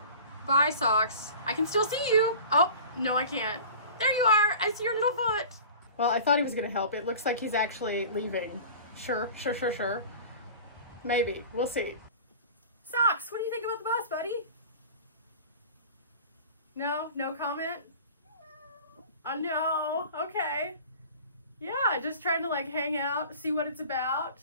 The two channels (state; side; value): inverted; both; correlation -0.40